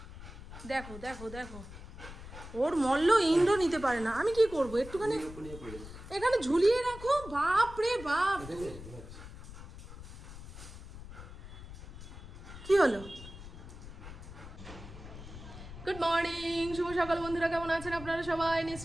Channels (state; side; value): noise; left; rumble, 14 dB below the sound